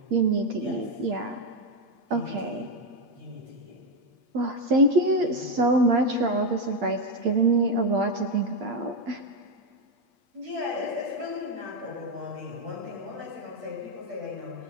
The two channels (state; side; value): late; left; 8.5 ms